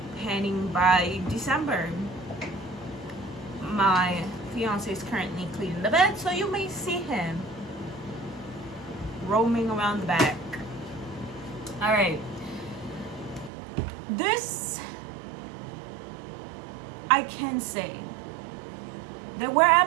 Panning by December. My fiance is currently cleaning the bed, so you may see him roaming around the back. All right, this I can say there were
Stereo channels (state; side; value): drops out; left; at 13.5 s